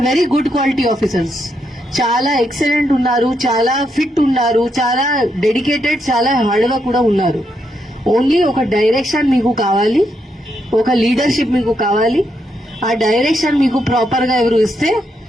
very good quality officers. చాలా ఎక్సలెంట్ ఉన్నారు, చాలా ఫిట్ ఉన్నారు, చాలా డెడికేటెడ్, చాలా హార్డ్ వర్క్ కూడా ఉన్నారు. ఓన్లీ ఒక డైరెక్షన్ మీకు కావాలి, ఒక లీడర్షిప్ మీకు కావాలి. ఆ డైరెక్షన్ మీకు ప్రాపర్ గా ఎవరు ఇస్తే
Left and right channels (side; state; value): both; normal; correlation 0.79